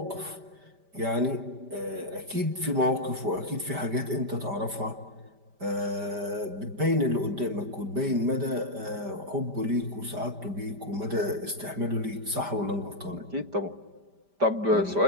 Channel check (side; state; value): left; late; 5.1 ms